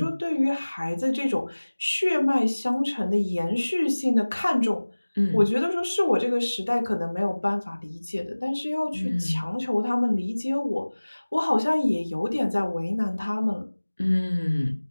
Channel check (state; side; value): inverted; both; correlation -1.00